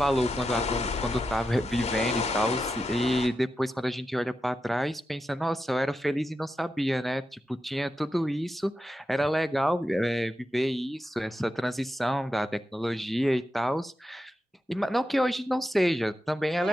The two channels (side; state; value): both; normal; correlation 0.89